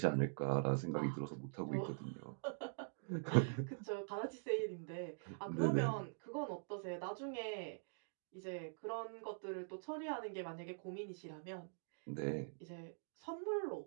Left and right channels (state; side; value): silent; left; digital silence